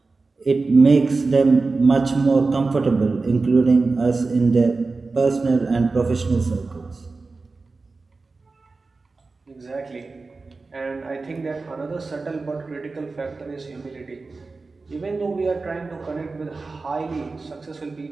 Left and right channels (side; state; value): left; quieter; 3.9 dB